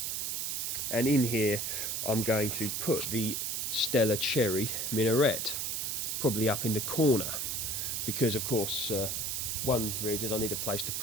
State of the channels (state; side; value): noise; right; hiss, 1 dB below the sound